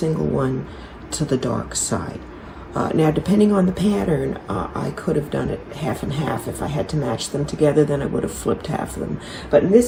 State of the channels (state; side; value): identical; both; correlation 1.00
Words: one to the dark side. Now, depending on the pattern, I could have done it half and half. If I had to match them together, then I would have flipped half of them. But in